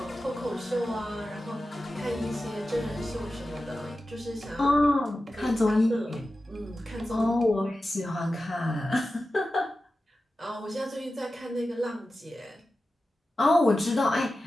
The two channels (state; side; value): normal; both; correlation 0.93